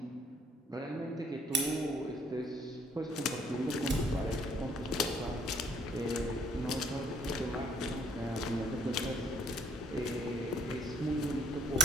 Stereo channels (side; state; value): both; normal; correlation 0.64